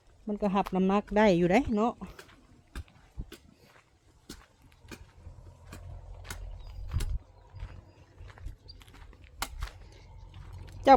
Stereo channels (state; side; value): identical; both; correlation 1.00